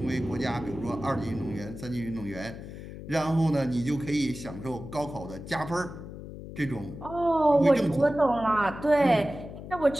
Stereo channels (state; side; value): noise; left; hum, 12 dB below the sound